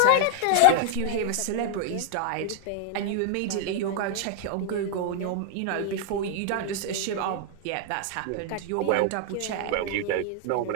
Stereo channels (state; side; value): different; both; correlation 0.00